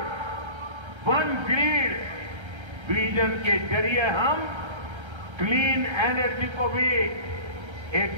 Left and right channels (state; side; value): late; left; 1.3 ms